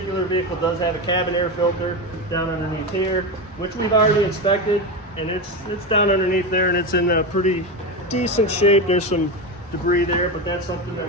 vehicle does have a cabin air filter down underneath here, which we've already inspected, and it's down underneath there, and it's in a pretty decent shape. There's some debris there, but that's something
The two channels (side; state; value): both; normal; correlation 0.17